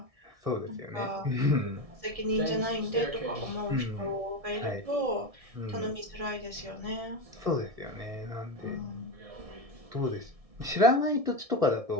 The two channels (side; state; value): left; late; 1.6 ms